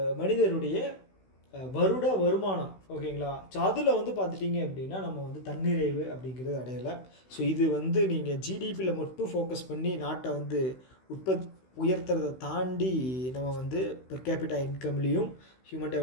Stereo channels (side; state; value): right; late; 16 ms